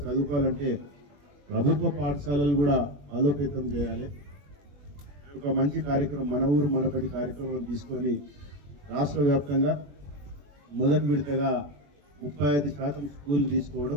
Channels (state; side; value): late; left; 21 ms